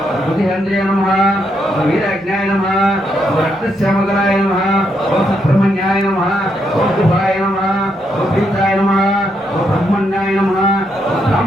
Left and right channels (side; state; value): both; normal; correlation 0.78